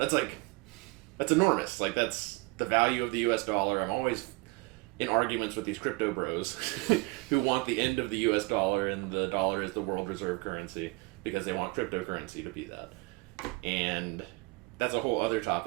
enormous. Like, that's the value of the U.S. dollar. I'm always in arguments with these crypto bros who want the end of the U.S. dollar, and the dollar is the world reserve currency because they want cryptocurrency to be that. And that's a whole other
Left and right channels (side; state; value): left; quieter; 25.7 dB